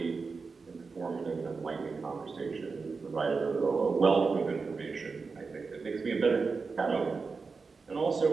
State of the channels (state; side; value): quieter; left; 4.6 dB